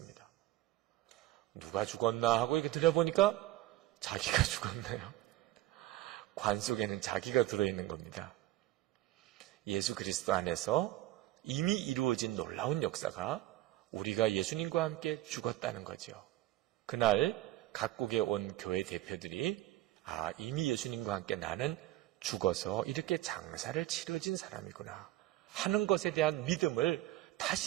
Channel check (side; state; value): left; quieter; 15.6 dB